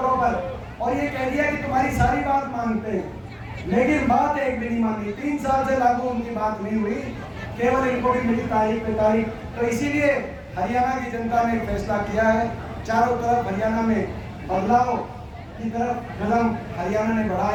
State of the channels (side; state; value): both; identical; correlation 1.00